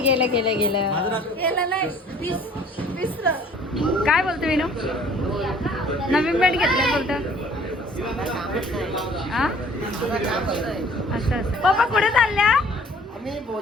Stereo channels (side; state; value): both; normal; correlation 0.53